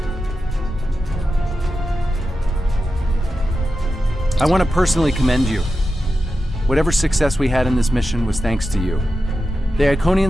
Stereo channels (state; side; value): normal; both; correlation 0.91